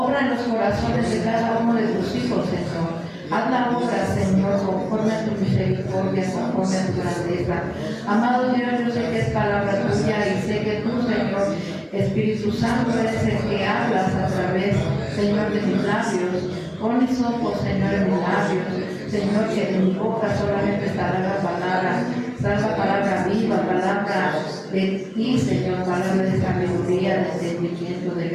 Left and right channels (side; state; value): both; identical; correlation 1.00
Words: en los corazones de cada uno de tus hijos, Señor. Haz la obra, Señor, conforme a tu misericordia, conforme a tu grandeza. Amado Dios, yo sé que es palabra tuya y sé que tú, Señor, Espíritu Santo, eres el que hablas a través, Señor, de mis labios. Pon mis ojos, Señor, en mis labios. Señor, que de mi boca solamente estará la palabra viva, palabra de ti, Señor, palabra de sabiduría, de entendimiento, de